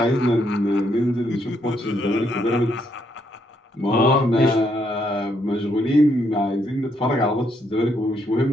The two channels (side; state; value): both; normal; correlation 0.74